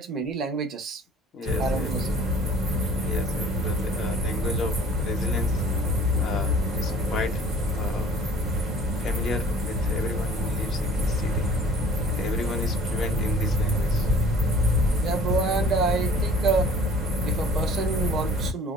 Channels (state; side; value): normal; both; correlation 0.50